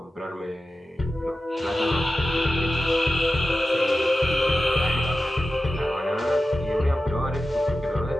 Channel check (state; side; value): normal; both; correlation 0.93